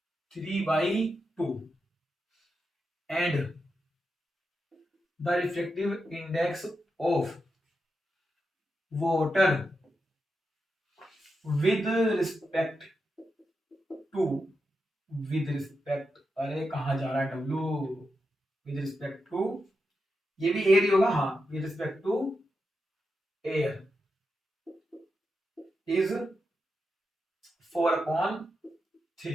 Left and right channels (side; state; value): both; normal; correlation 0.87